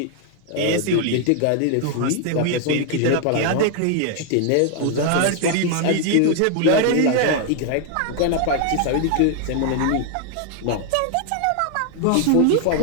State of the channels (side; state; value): both; different; correlation 0.00